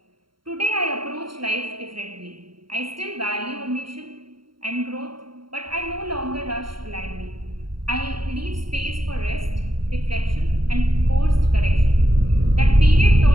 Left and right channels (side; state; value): left; late; 0.73 ms